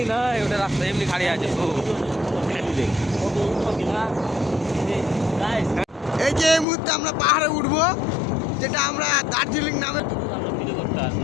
নয়, ওটা রাস্তা এমনি খালি আছে। এই যে এই মুহূর্তে আমরা পাহাড়ে উঠবো, যেটা আমরা দার্জিলিং নামে ভিডিও করতে আসি।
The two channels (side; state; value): right; drops out; at 6.7 s